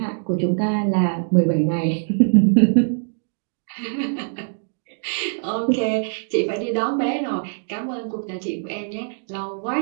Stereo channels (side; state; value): left; silent; digital silence